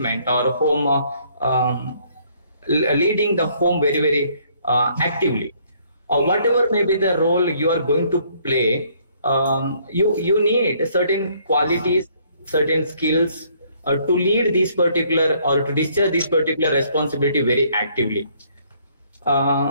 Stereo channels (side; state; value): both; inverted; correlation -0.64